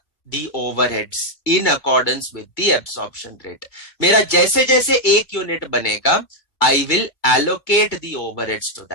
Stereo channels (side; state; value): right; late; 2.1 ms